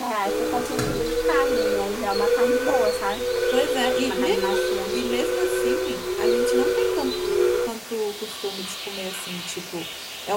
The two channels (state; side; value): identical; both; correlation 1.00